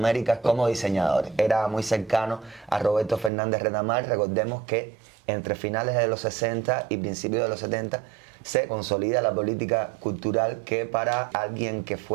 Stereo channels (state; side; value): drops out; left; at 3.3 s